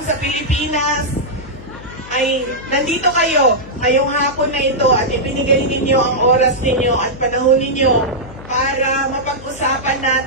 sa Pilipinas, ay nandito kayo ngayong hapon na ito at ibinigay ninyo ang oras ninyo at panahon ninyo para mapag-usapan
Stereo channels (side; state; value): left; noise; hum, 17 dB below the sound